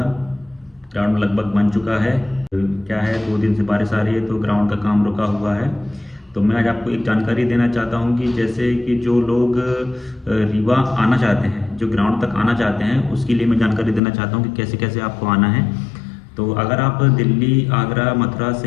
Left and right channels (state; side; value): drops out; right; at 14.0 s